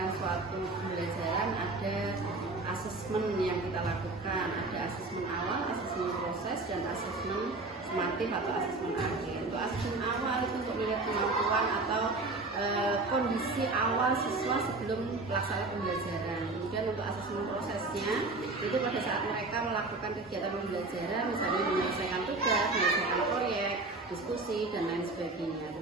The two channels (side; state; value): left; quieter; 3.3 dB